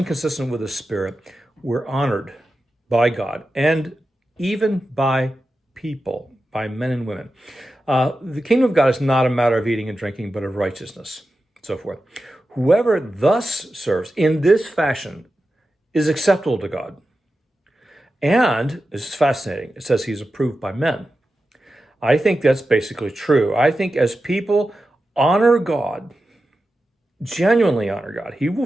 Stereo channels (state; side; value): normal; both; correlation 0.92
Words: consistent with the Spirit, we're honored by God and even by people, by men and women. The kingdom of God is not a matter of eating and drinking, but of righteousness, so forth. Whoever thus serves in this fashion is acceptable to God. And this is fascinating. It says he's approved by men. I think that's basically true. I think as people honor God, genuinely honor God, he will